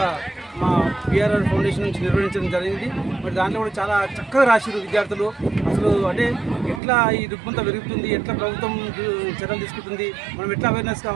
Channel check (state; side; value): drops out; left; at 6.8 s